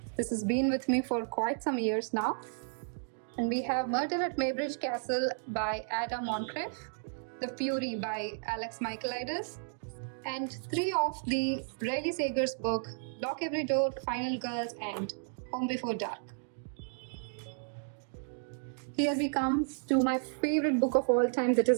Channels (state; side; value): silent; left; digital silence